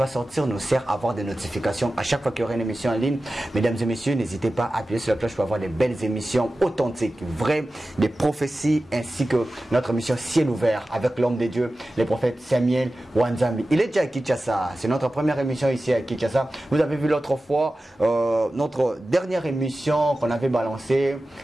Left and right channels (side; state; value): both; normal; correlation 0.95